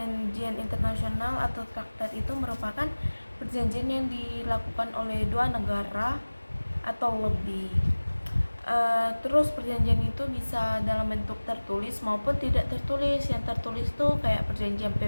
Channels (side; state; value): both; inverted; correlation -1.00